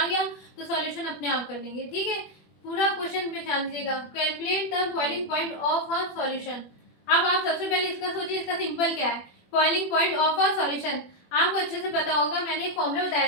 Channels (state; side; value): late; right; 21 ms